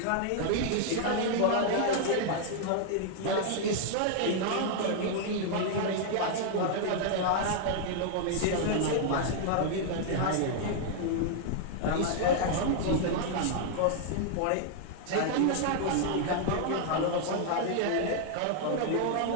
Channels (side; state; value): both; different; correlation -0.01